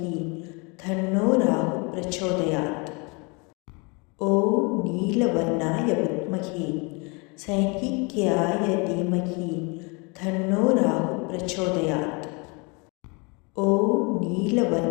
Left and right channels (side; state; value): right; quieter; 30.5 dB